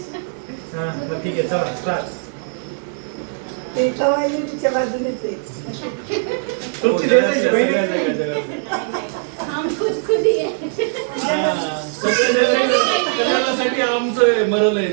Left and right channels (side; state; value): left; silent; 59 dB below the other